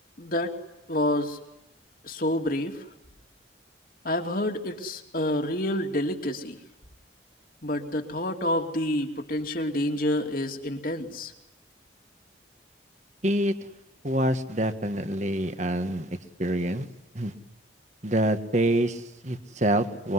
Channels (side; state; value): both; normal; correlation 0.44